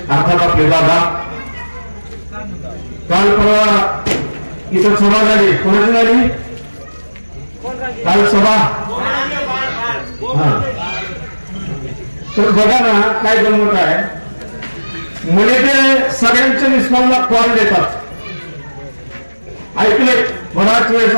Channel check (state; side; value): inverted; both; correlation -1.00